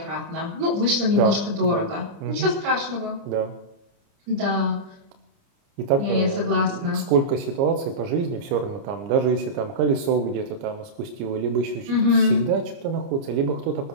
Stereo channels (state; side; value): late; left; 30 ms